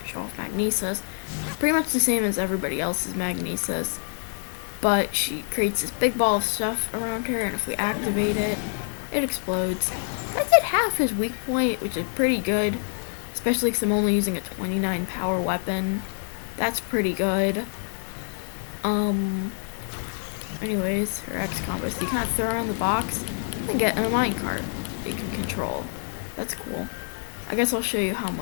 show off Magnesis. Pretty much the same as everybody else's Magnesis, but she creates this big ball of stuff around her, and if we activate it, it explodes. I did half his weak point, which is pretty good, especially because I'm only using a 29 power weapon. That's pretty good. Anyways, her X combo, so you kind of throw her on the box and get a minecart that you can control. That's cool. I guess I'll show you how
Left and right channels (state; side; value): silent; right; 61 dB below the other